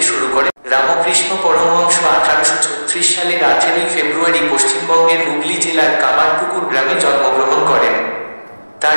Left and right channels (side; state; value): both; inverted; correlation -1.00